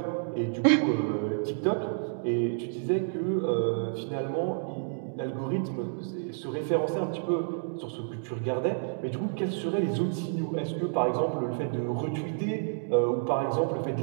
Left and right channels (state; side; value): silent; left; digital silence